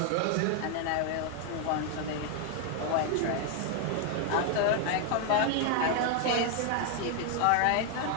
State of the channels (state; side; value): different; both; correlation 0.00